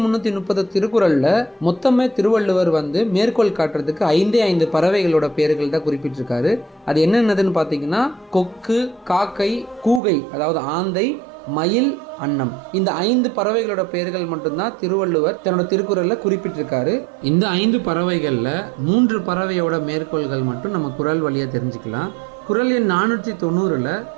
திருக்குறளில் மொத்தமே திருவள்ளுவர் மேற்கோள் காட்டுறதுக்கு 5 பறவைகளோட பேர்கள் தான் குறிப்பிட்டிருக்காரு. அது என்னென்னதுன்னு பார்த்தீங்கன்னா கொக்கு, காக்கை, கூகை அதாவது ஆந்தை, மயில், அன்னம். இந்த 5 பறவைகளோட பெயர்கள் மட்டும்தான் திருவள்ளுவர் தன்னோட திருக்குறளில் குறிப்பிட்டிருக்காரு. இந்த 5 பறவைகளில் 3 பறவையோட மேற்கோள்கள் மட்டும் நம்ம குறள் வழியாக தெரிஞ்சுக்கலாம். குறள் எண் 490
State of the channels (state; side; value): drops out; left; at 10.0 s